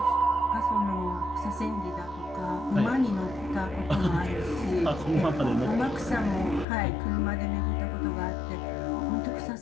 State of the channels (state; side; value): drops out; right; at 6.7 s